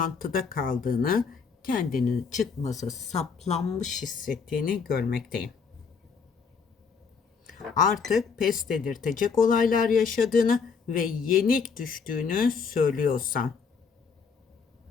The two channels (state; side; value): quieter; right; 5.7 dB